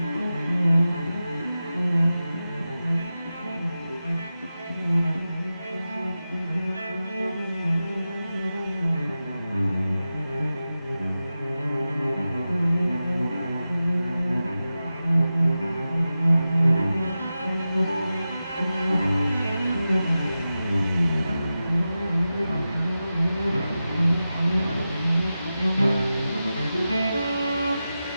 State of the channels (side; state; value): both; inverted; correlation -0.93